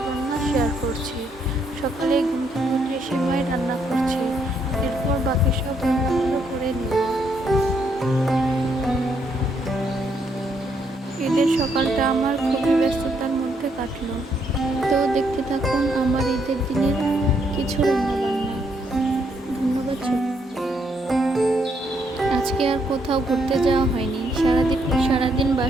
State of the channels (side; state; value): both; normal; correlation 0.73